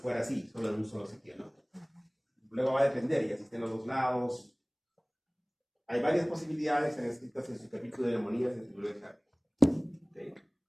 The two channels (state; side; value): identical; both; correlation 1.00